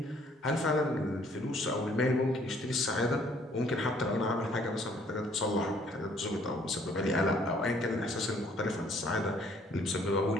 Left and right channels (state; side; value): normal; both; correlation 0.62